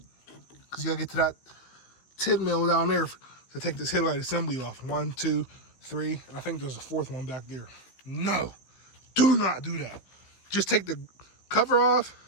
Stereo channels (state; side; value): late; right; 15 ms